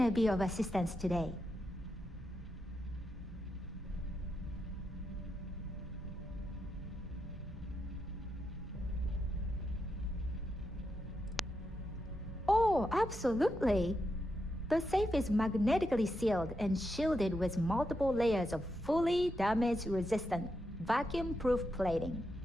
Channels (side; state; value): both; normal; correlation 0.84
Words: be of assistance today? Oh, absolutely. The safe is magnetically sealed and shielded with multiple layers of fully damage-resistant, vacuum-proof plating.